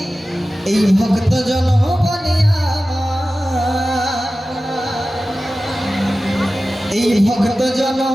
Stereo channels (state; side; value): normal; both; correlation 0.95